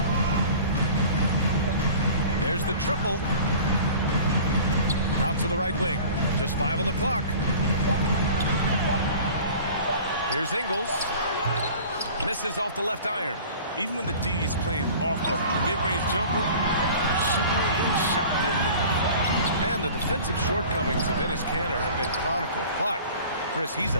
There's the triple. Out to the right wing. Just 5 on the clock. Here's Ingles. Misses off the left iron. Even when the D is playing off of the mid-range jumper, shouldn't be the shot they're looking. And the defensive shortcomings of Enes Kanter have been chronicled. But, Chris, he's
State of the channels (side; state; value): both; inverted; correlation -0.43